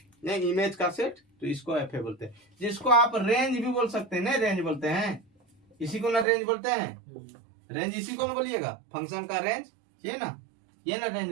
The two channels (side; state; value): left; drops out; at 6.2 s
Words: नहीं इमेज का सेट, तो इसको FA बोलते हैं। जिसको आप रेंज भी बोल सकते हैं, नहीं रेंज बोलते हैं, इसी को ना रेंज बोलते हैं। रेंज इसी को ना बोलिएगा, फंक्शन का रेंज, ये ना